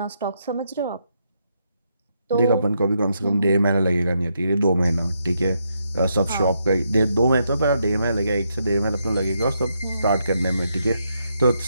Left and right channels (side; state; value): both; inverted; correlation -0.79